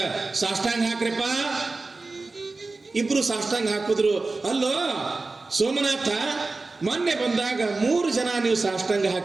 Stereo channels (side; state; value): left; quieter; 3.6 dB